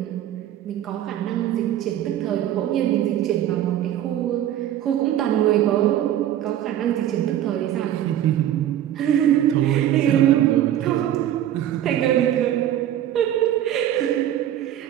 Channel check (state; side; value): quieter; left; 11.7 dB